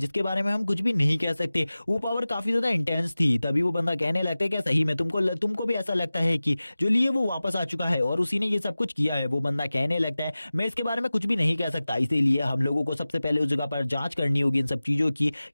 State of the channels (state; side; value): inverted; both; correlation -0.97